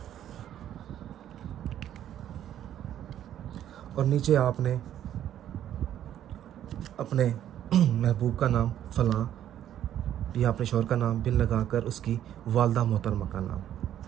और नीचे आपने अपने महबूब का नाम फ़लाँ या अपने शौहर का नाम बिन लगाकर उसकी वालदा मोहतरमा का नाम,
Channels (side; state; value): left; quieter; 11.1 dB